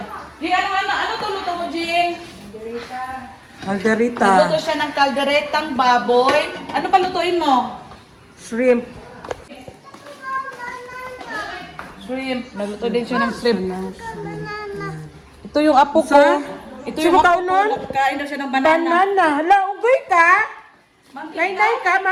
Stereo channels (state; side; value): identical; both; correlation 1.00